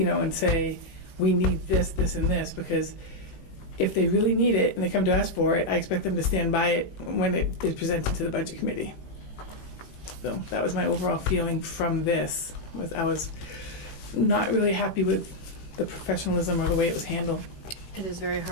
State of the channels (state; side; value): late; right; 18 ms